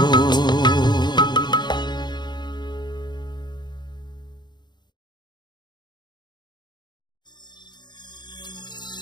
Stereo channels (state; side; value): late; right; 0.21 ms